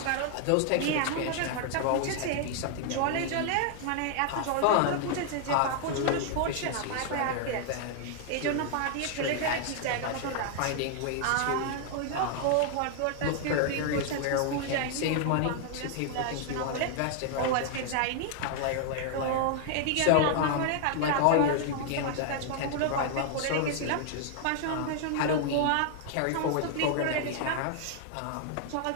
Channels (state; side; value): different; both; correlation 0.00